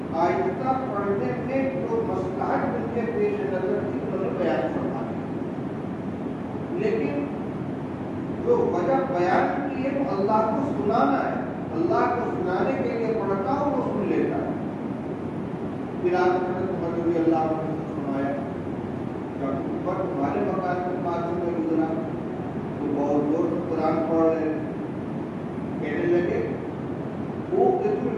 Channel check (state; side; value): identical; both; correlation 1.00